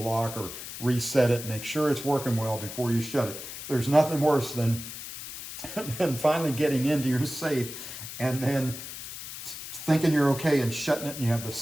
or reset it. Make sure it's working well before you shut it. There's nothing worse than finally getting into your safe and then thinking you're okay and shutting it, and you have the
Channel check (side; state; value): left; noise; hiss, 10 dB below the sound